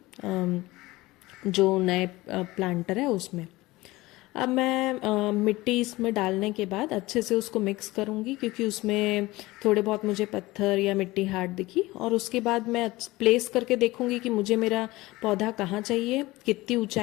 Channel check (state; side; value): quieter; right; 19.7 dB